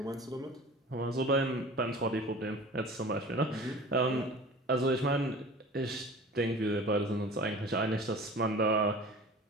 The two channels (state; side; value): normal; both; correlation 0.40